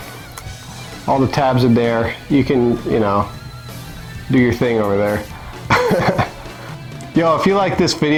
the tabs are there. You can, do your thing over there. Yo, if you like this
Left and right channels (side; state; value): both; identical; correlation 1.00